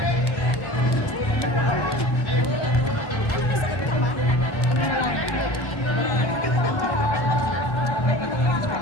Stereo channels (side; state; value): right; late; 1.2 ms